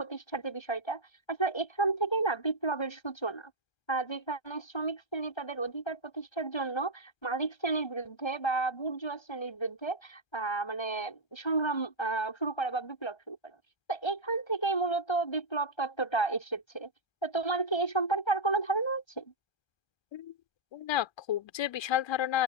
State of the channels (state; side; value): late; right; 1.3 ms